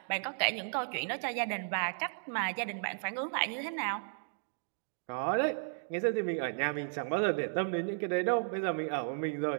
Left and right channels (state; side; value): silent; left; digital silence